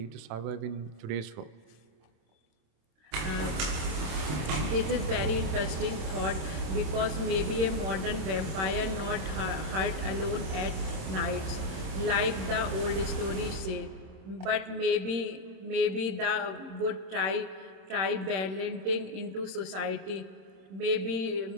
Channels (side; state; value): left; late; 27 ms